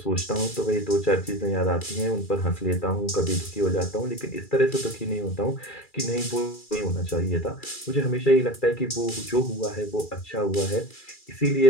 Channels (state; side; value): late; right; 2.3 ms